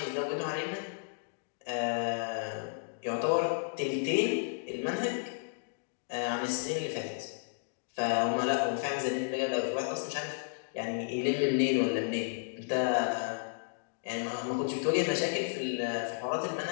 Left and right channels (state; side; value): silent; right; digital silence